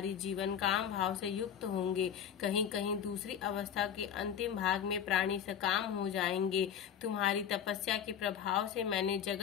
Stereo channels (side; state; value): right; quieter; 8.5 dB